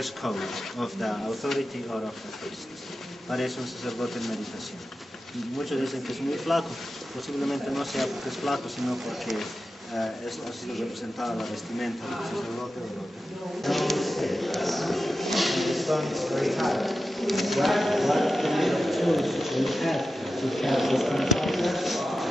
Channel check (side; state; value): both; normal; correlation 0.92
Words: code of the authority or of the priest. Parece un sacerdote en meditación. Muchos dicen que es muy flaco. Posiblemente no sea porque es flaco, sino porque es así representada la vestimenta del sacerdote o the stone is very hard. What kind of tools we have to catch this kind of objects?